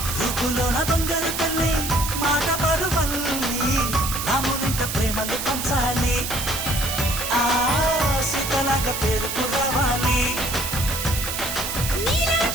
రూపులోన దొంగలు తల్లి మాట పరువల్లి రామునింట ప్రేమలు పంచాలి ఆ సీతలాగా పేరుకు రావాలి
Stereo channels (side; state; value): right; noise; hiss, 4 dB below the sound